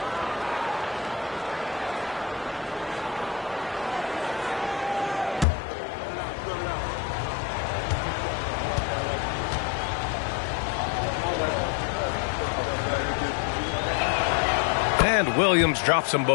And Williams drops them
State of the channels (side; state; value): right; drops out; at 5.5 s